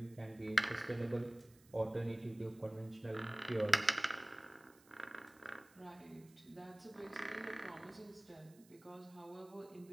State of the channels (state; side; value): noise; right; hiss, 26 dB below the sound